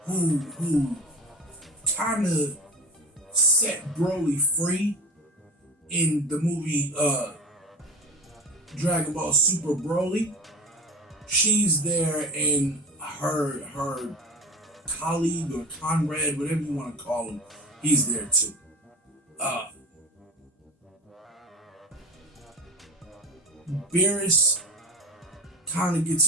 who kind of set Broly free in the movie Dragon Ball Super Broly, she's there, and her colleague or comrade, whatever you want to call him, he's there too. Beerus kind of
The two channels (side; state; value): both; normal; correlation 0.32